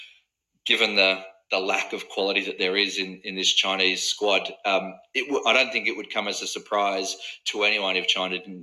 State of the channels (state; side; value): identical; both; correlation 1.00